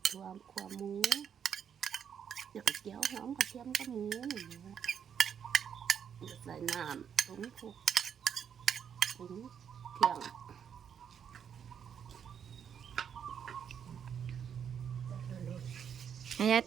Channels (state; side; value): quieter; left; 8.0 dB